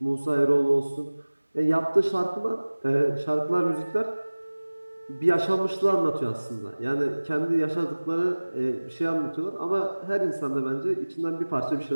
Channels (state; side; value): inverted; both; correlation -1.00